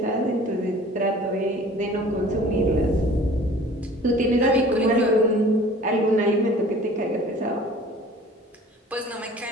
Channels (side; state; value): both; normal; correlation 0.47